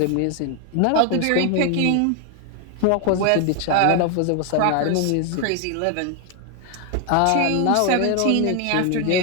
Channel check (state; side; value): different; both; correlation 0.01